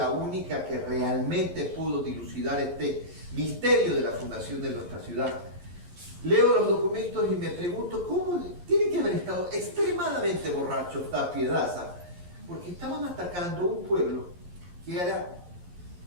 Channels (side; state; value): left; late; 11 ms